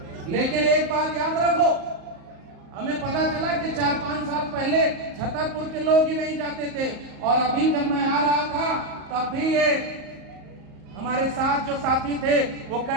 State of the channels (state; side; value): late; left; 38 ms